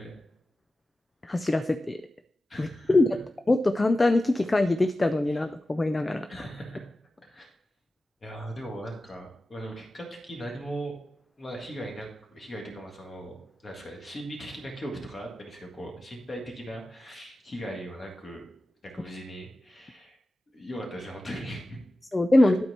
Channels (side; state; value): both; normal; correlation 0.94